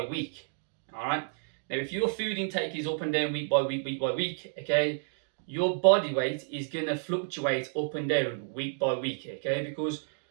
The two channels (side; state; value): left; silent; digital silence